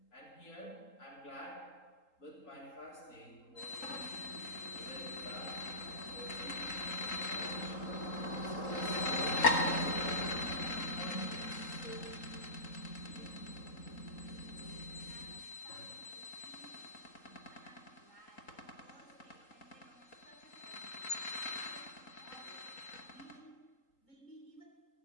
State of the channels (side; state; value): right; late; 3.8 ms